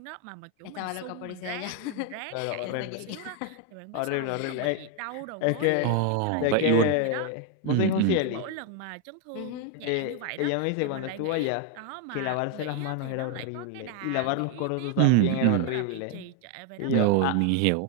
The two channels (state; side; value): different; both; correlation 0.01